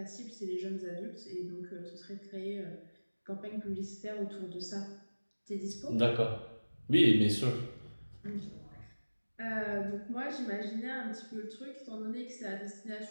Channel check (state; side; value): inverted; both; correlation -1.00